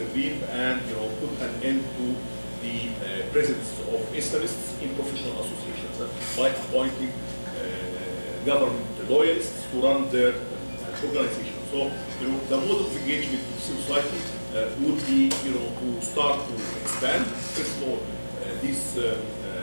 and, put an end to the presence of Islamists in professional associations by appointing government loyalists to run their organization. So, the mode of engagement with civil society would be, to start to expand. First of all,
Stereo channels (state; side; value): inverted; both; correlation -1.00